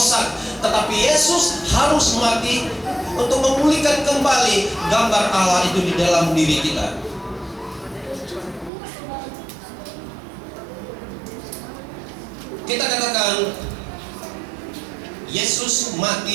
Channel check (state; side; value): drops out; left; at 8.7 s